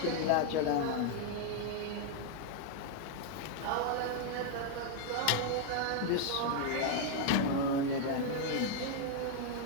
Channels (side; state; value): both; different; correlation 0.00